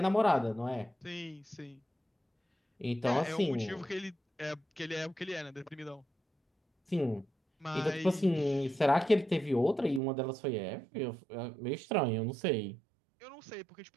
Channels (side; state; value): left; drops out; at 10.0 s